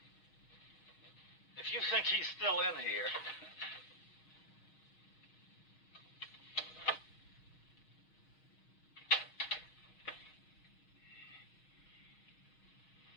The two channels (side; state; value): right; late; 6.4 ms